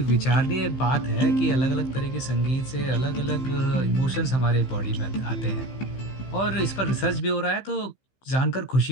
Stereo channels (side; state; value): right; late; 15 ms